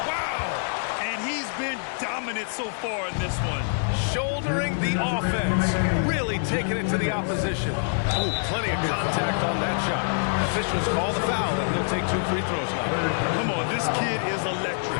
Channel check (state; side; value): silent; right; 61 dB below the other